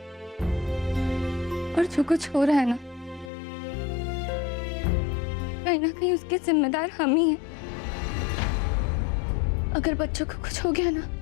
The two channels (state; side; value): drops out; right; at 3.3 s